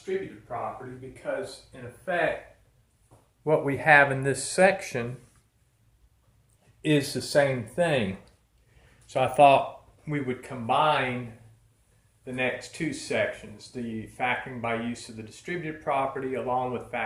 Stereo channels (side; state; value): both; identical; correlation 1.00